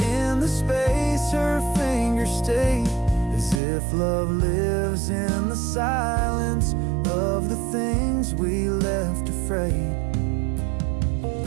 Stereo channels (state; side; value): drops out; left; at 3.6 s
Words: the space her fingers stay, as if love lives in the silence of the things we left afraid.